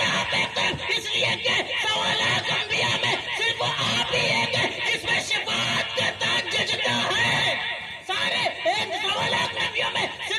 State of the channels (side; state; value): both; identical; correlation 1.00